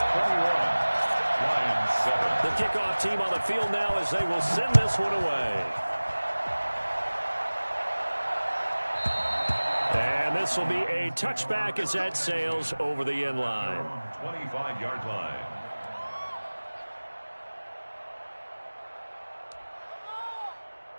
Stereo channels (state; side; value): inverted; both; correlation -1.00